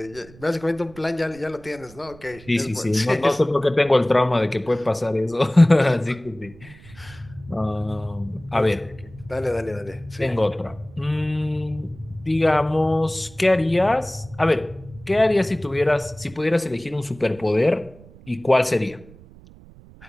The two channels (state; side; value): noise; right; rumble, 22 dB below the sound